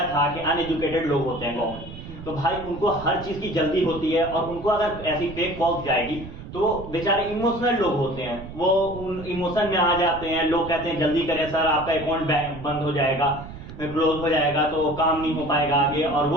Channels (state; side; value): noise; right; rumble, 13 dB below the sound